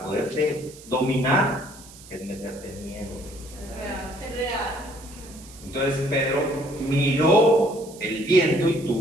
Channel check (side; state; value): right; noise; hiss, 19 dB below the sound